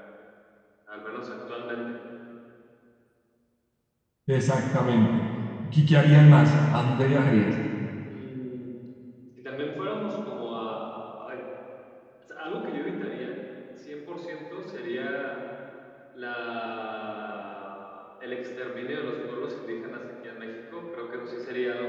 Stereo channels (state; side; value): identical; both; correlation 1.00